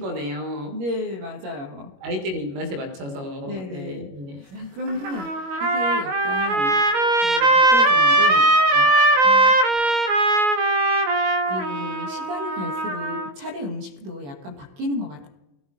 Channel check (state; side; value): late; left; 21 ms